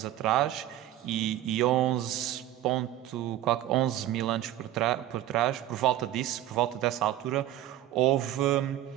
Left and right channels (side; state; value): left; quieter; 13.0 dB